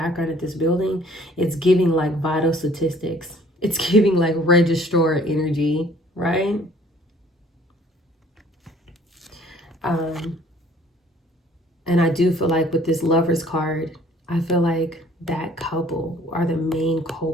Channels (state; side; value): normal; both; correlation 0.56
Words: at this building, it's giving like vital statistics. It's giving like registrar energy, right? And I do feel like with this Lovers card, I feel like that couple are the main